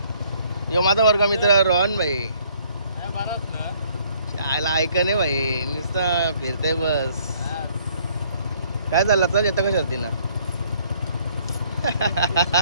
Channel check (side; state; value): both; inverted; correlation -0.63